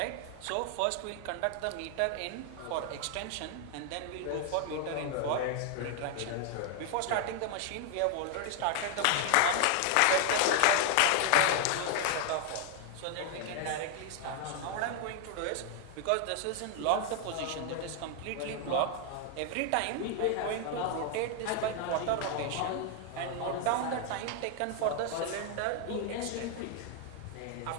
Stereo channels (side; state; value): both; different; correlation 0.00